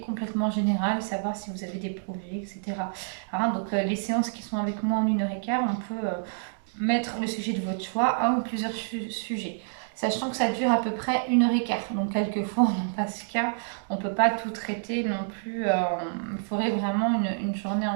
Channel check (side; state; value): left; silent; digital silence